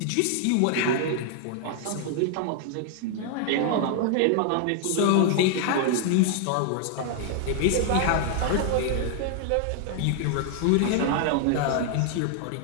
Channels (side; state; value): both; different; correlation 0.00